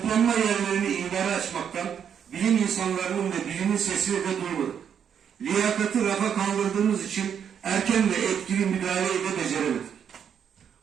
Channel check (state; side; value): quieter; left; 8.1 dB